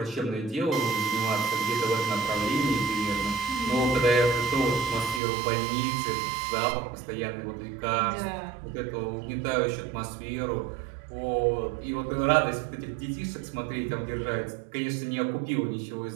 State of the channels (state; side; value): drops out; left; at 5.2 s